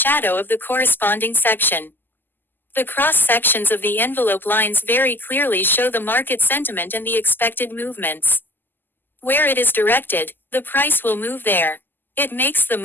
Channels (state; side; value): late; right; 0.092 ms